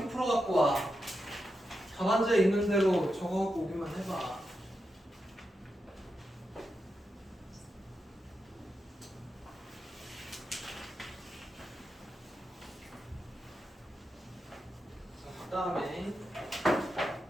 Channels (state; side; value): normal; both; correlation 0.87